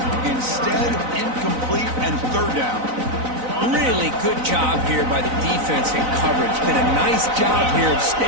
Instead, incomplete and third down. Really good job here by the defense in coverage. Did a nice job here of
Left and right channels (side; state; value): left; late; 4.0 ms